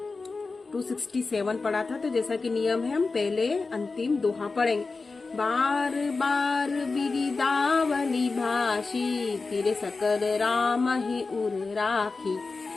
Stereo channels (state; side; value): quieter; right; 4.0 dB